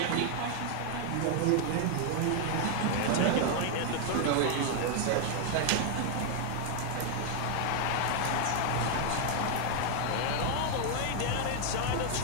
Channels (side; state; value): both; different; correlation 0.00